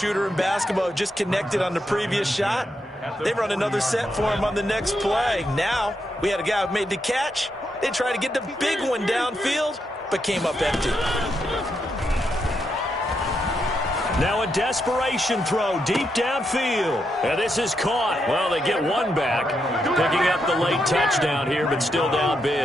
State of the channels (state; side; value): normal; both; correlation 0.82